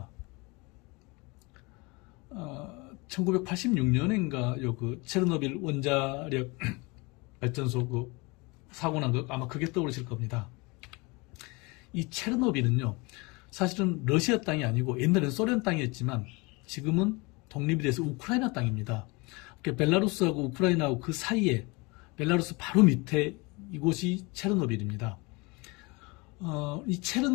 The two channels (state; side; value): quieter; right; 26.6 dB